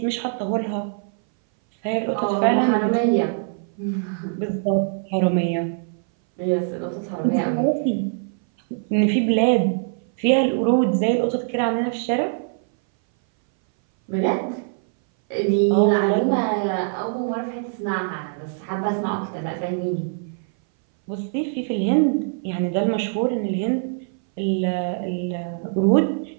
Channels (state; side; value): silent; left; 60 dB below the other